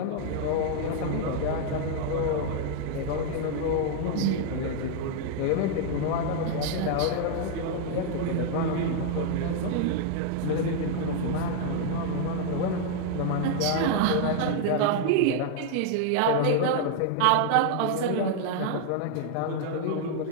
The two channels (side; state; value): both; different; correlation 0.00